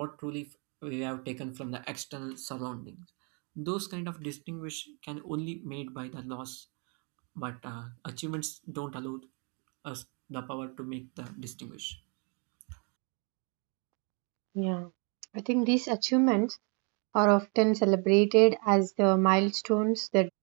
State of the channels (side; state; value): left; quieter; 36.2 dB